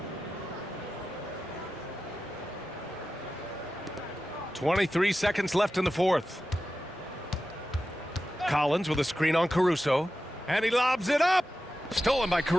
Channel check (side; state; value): both; normal; correlation 0.93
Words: .23 seconds left in the fourth. Collins with a screen on Caruso. And he lobs it up. Stolen by